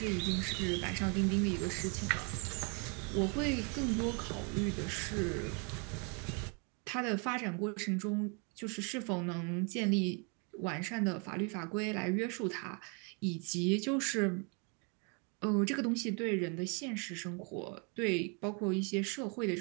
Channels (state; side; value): quieter; left; 35.4 dB